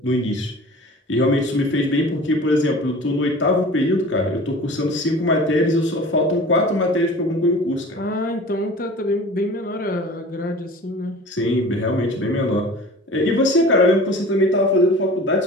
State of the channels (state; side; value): normal; both; correlation 0.41